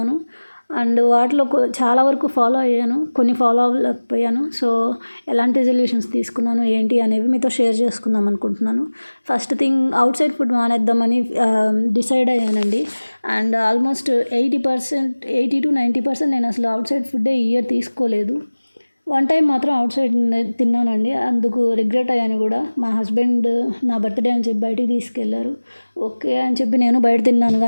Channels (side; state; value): both; inverted; correlation -1.00